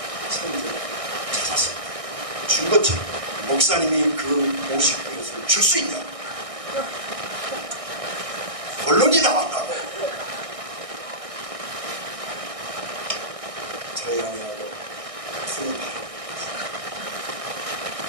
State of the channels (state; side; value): late; left; 1.6 ms